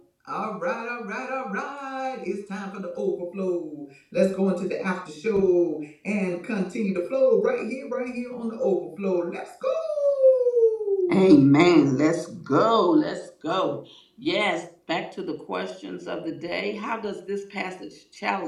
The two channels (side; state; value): both; identical; correlation 1.00